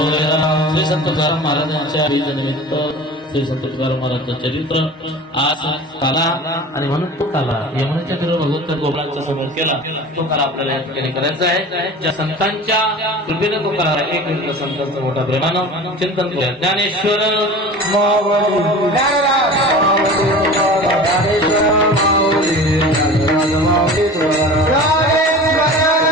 श्री संत तुकाराम महाराजांच्या निमित्त श्री संत तुकाराम महाराजांचं चरित्र आज काला आणि म्हणून तो काला यमुनेच्या तीरावर भगवंत गोपाळांच्या समोर केला. तो काला आपल्याला या ठिकाणी करायचा आहे. ज्या संतांच्या कृपेने तो करा एक मिनिट संतांचं मोठ्या प्रेमानं चिंतन करूया. ज्ञानेश्वर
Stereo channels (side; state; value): both; normal; correlation 0.37